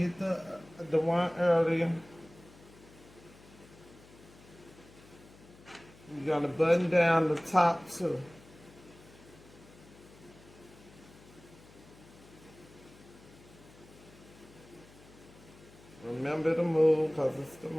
the one earlier. You're going to button down the top too. Remember to move because it's the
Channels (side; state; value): left; noise; hum, 22 dB below the sound